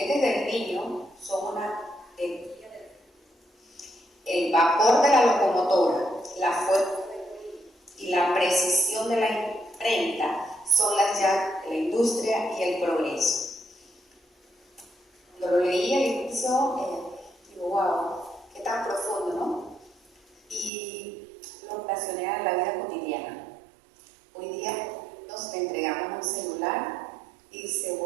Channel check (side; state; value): left; drops out; at 20.7 s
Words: del niño son una energía el vapor de la locomotora, la fuerza y la precisión de la imprenta son las llaves de la industria y el progreso. Cuando lo leí al inicio, digo, wow, qué tan profundo, ¿no? Y lo relacioné a la vida cotidiana. Hoy día nos entregamos un celular y se